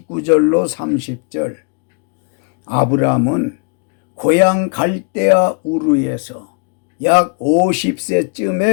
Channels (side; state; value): right; quieter; 39.3 dB